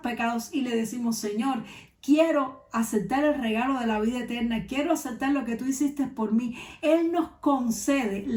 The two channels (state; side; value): identical; both; correlation 1.00